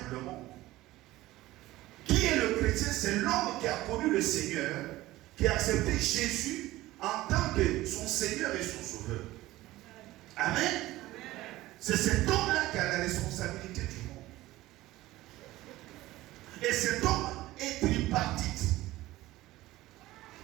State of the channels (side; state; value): left; quieter; 17.2 dB